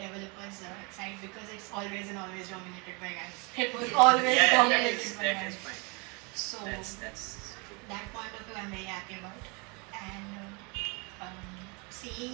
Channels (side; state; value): left; quieter; 30.7 dB